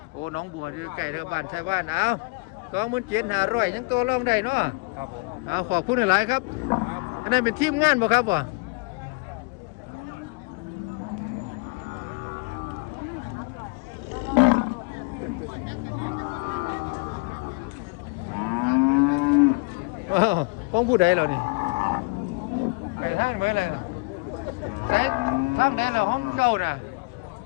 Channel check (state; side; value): quieter; right; 29.4 dB